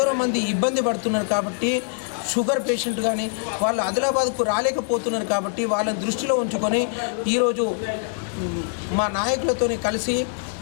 మంది ఇబ్బంది పడుతున్నారు. కాబట్టి షుగర్ పేషెంట్ కానీ వాళ్ళు ఆదిలాబాద్కు రాలేకపోతున్నారు. కాబట్టి వాళ్ళని దృష్టిలో ఉంచుకొని ఈరోజు మా నాయకులతో కలిసి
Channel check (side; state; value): right; silent; digital silence